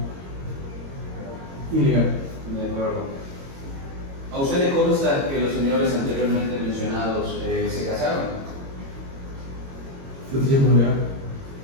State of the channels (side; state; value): left; late; 22 ms